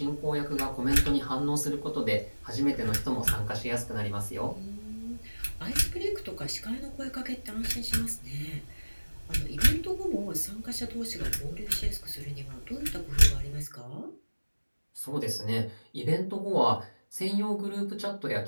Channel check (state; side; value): inverted; both; correlation -1.00